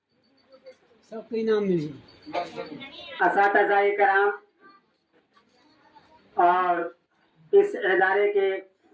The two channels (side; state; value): both; identical; correlation 1.00